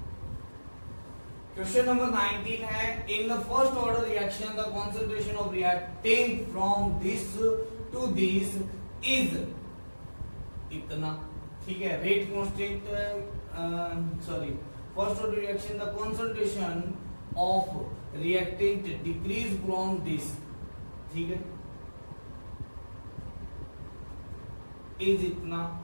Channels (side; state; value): both; inverted; correlation -1.00